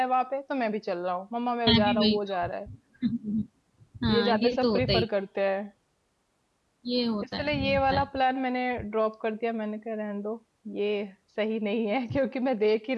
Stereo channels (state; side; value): identical; both; correlation 1.00